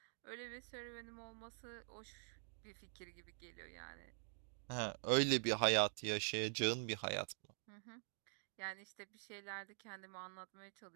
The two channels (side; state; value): left; silent; digital silence